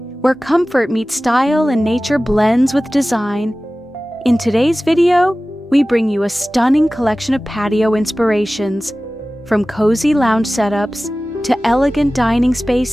where comfort meets style and nature blends with design. In today's video, we bring you a stunning collection of patio inspirations, from cozy lounge setups to elegant dining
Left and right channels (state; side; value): normal; both; correlation 0.97